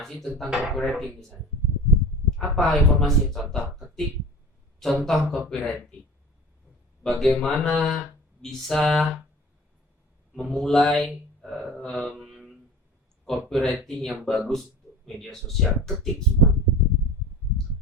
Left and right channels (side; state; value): both; normal; correlation 0.38